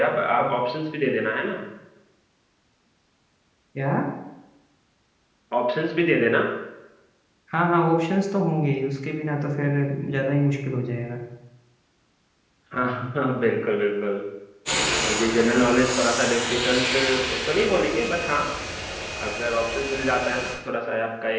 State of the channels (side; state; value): both; identical; correlation 1.00